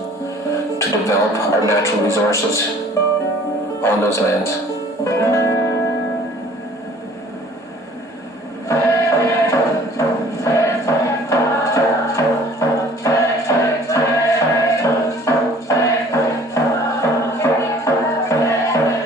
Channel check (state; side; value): normal; both; correlation 0.52